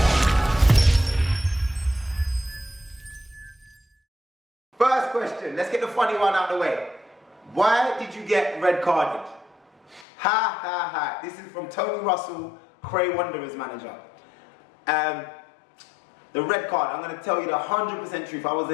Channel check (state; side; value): drops out; right; at 10.1 s